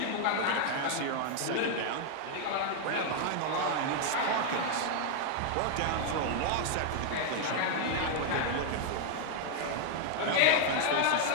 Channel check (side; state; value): both; different; correlation 0.00